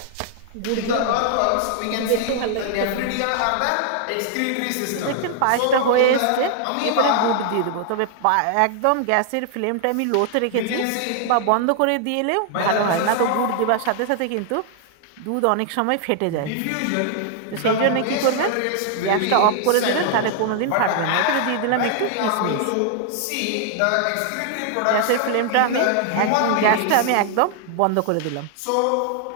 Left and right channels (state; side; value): different; both; correlation 0.00